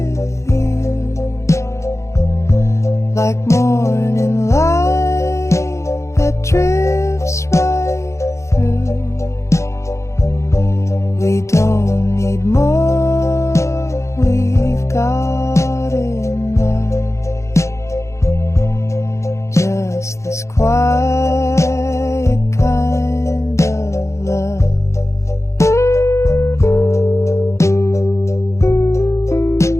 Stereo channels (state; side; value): late; right; 0.14 ms